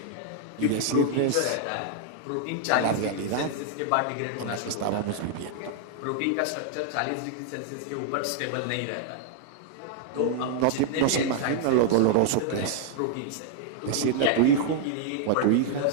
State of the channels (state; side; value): different; both; correlation -0.01